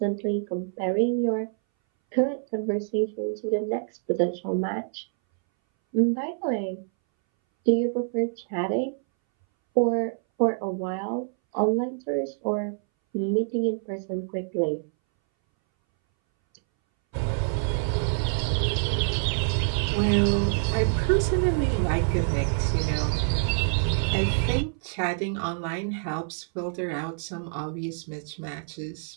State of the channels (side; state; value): left; silent; 60 dB below the other